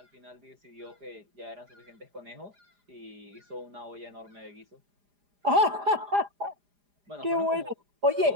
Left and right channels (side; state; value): left; late; 4.9 ms